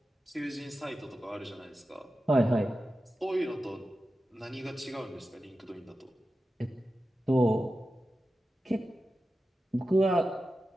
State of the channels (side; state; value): both; normal; correlation 0.92